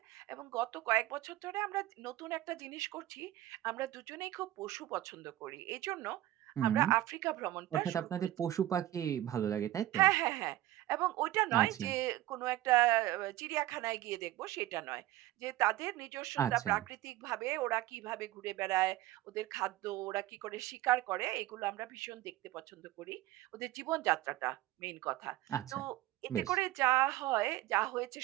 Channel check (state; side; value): quieter; left; 15.3 dB